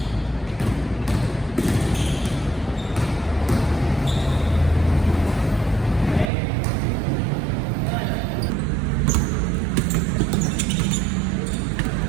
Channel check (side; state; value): left; drops out; at 6.3 s